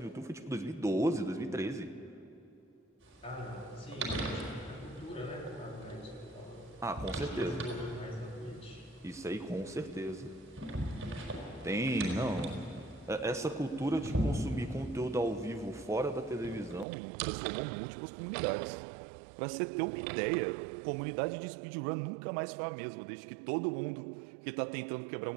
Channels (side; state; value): left; drops out; at 16.9 s